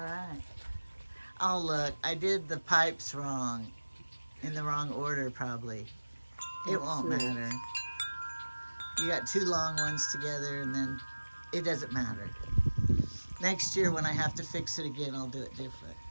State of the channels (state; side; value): inverted; both; correlation -1.00